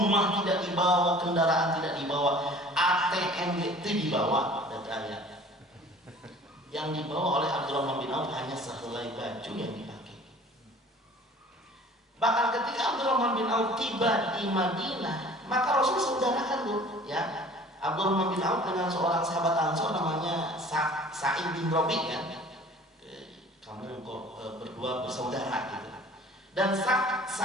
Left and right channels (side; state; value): both; normal; correlation 0.48